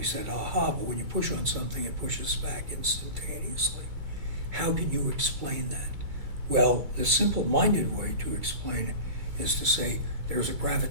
said, aha, but when you push on something, it pushes back instantaneously. How can you explain that? Well, the simple-minded way to explain it is to say there's a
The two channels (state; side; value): late; left; 2.3 ms